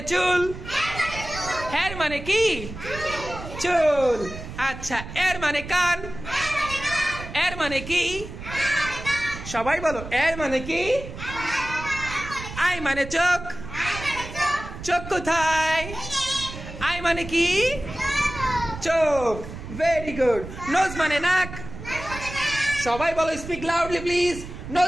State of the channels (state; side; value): noise; right; rumble, 11 dB below the sound